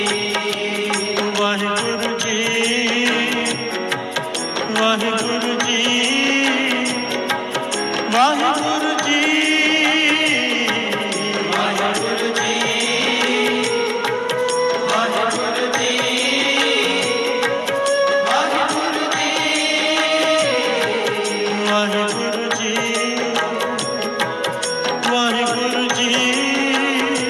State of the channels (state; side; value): identical; both; correlation 1.00